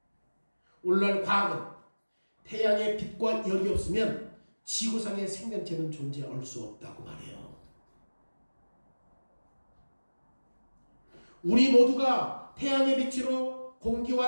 오늘날 과학은 태양의 빛과 열이 없으면 지구상의 생명체는 존재할 수 없다고 말해요. 우리 모두가 태양의 빛으로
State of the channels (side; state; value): both; inverted; correlation -1.00